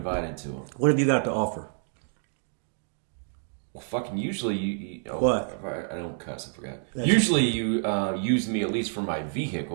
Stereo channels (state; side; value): silent; left; 59 dB below the other